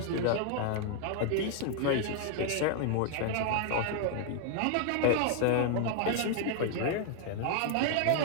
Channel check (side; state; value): both; different; correlation 0.00